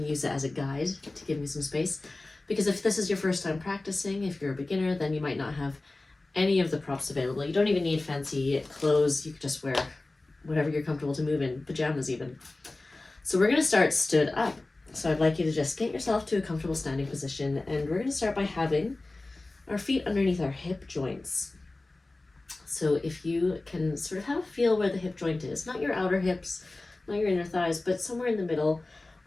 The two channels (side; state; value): right; quieter; 3.0 dB